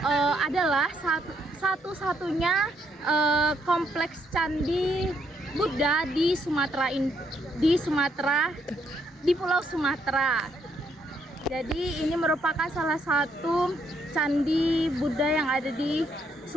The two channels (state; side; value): normal; both; correlation 0.73